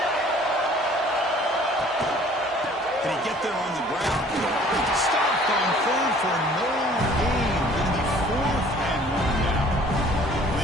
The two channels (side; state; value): both; normal; correlation 0.53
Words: Can he get there on the ground? Stopped on third for no gain. Going to be 4th and 1 now.